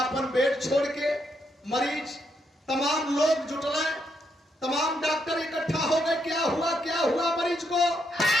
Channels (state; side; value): normal; both; correlation 0.78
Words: बेड छोड़ के मरीज तमाम लोग जुटले, तमाम डॉक्टर इकट्ठा हो गए। क्या हुआ मरीज को?